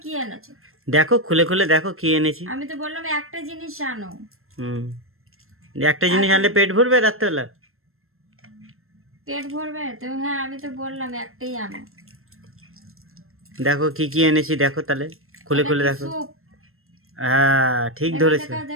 কি এনেছো? দেখো খুলে খুলে দেখো কি এনেছি। আমি তো বললাম একটা জিনিস আনো। হুম, একটা জিনিস এত আনলে পেট ভরবে রাত্রেবেলা? পেট ভরবে তো? হ্যাঁ, আমি তো বললাম একটাই আনো। দেখো কি কি এনেছি, দেখো তাহলে খুলে এটা খুলে কি দেখো। স্যুপ? হ্যাঁ ঠিক দেখাও ধরেছো, দেখাও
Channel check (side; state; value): left; late; 0.62 ms